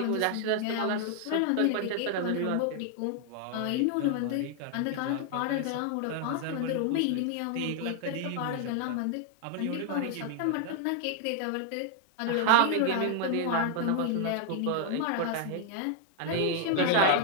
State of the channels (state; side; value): different; both; correlation 0.00